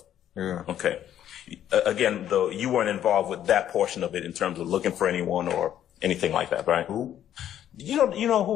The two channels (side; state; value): right; quieter; 10.8 dB